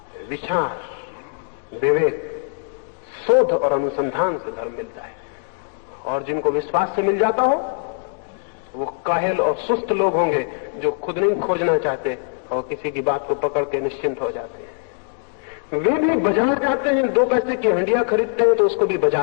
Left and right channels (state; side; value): silent; right; 64 dB below the other